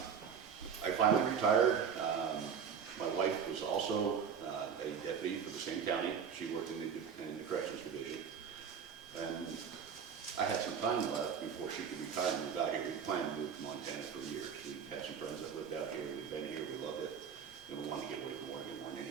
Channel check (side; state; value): left; quieter; 7.1 dB